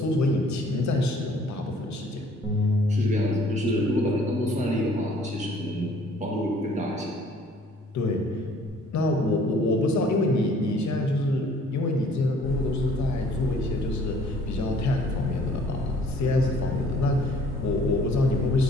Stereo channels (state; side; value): normal; both; correlation 0.57